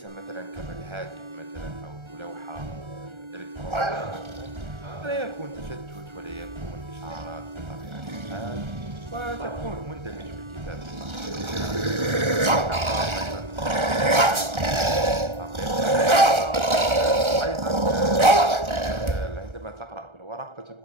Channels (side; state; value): left; late; 1.3 ms